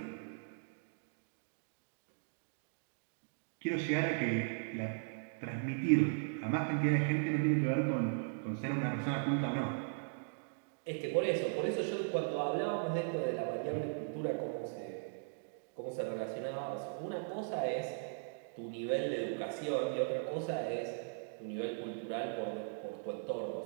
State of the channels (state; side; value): silent; left; digital silence